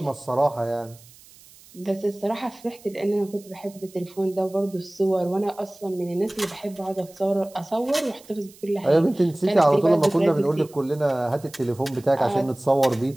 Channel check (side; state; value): right; noise; hiss, 24 dB below the sound